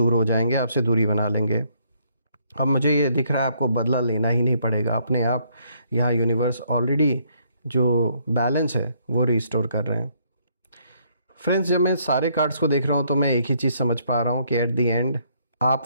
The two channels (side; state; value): both; inverted; correlation -0.68